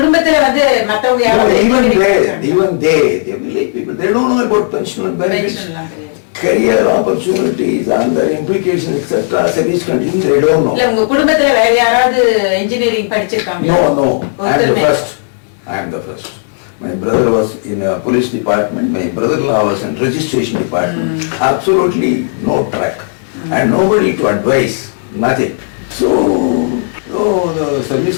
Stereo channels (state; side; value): silent; right; digital silence